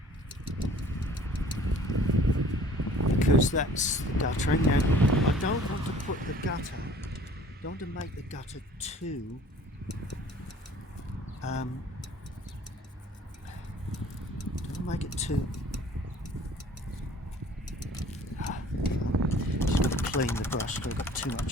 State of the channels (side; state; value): both; normal; correlation 0.51